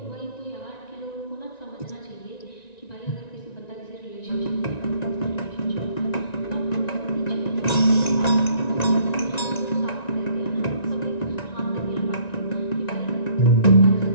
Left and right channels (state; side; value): late; right; 1.9 ms